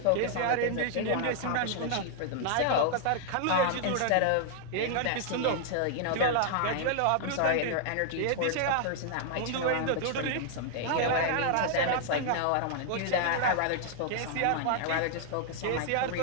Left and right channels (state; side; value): different; both; correlation 0.00